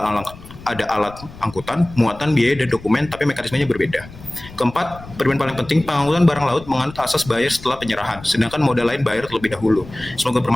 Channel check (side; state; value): left; noise; rumble, 17 dB below the sound